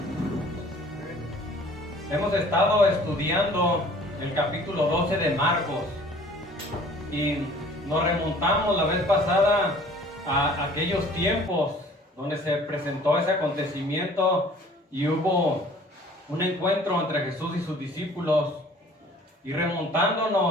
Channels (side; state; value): both; normal; correlation 0.51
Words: Hemos estado estudiando el capítulo 12 de Marcos y nos remontamos la vez pasada a aquellos tiempos donde se presentó ese acontecimiento y hubo un encuentro entre Jesús y sus discípulos. Y